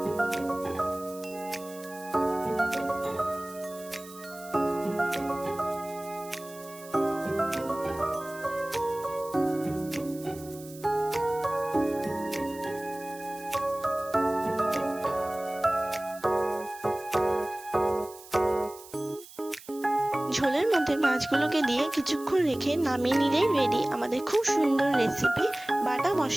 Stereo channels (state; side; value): noise; right; hiss, 19 dB below the sound